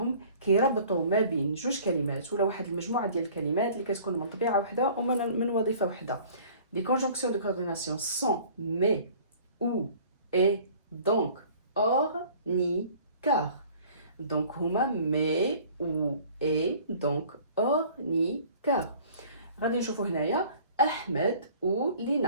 كيربطوا ما بين جوج كلمات ولا واحد المجموعه ديال الكلمات اللي كتكون من طبيعه وحده ومن وظيفه وحده. Les conjonctions de coordination sont mais, ou, et, donc, or, ni, car. Donc, هما mais, ou, et, donc, or, ni, car. غادي نشوفوا هنايا احمد و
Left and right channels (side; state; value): both; inverted; correlation -0.50